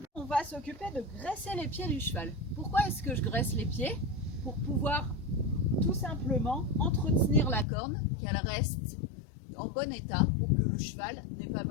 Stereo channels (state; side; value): drops out; right; at 7.7 s